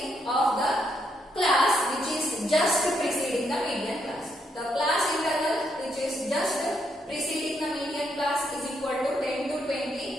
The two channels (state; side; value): normal; both; correlation 0.76